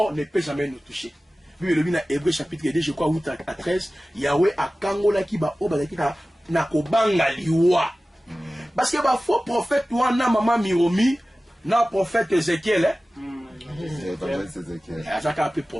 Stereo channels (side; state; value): both; normal; correlation 0.96